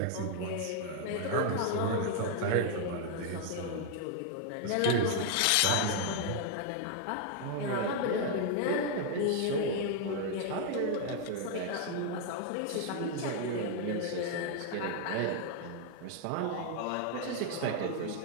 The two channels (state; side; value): different; both; correlation 0.00